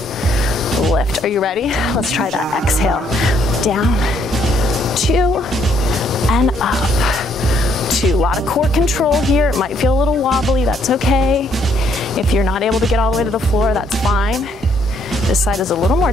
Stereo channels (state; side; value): normal; both; correlation 0.69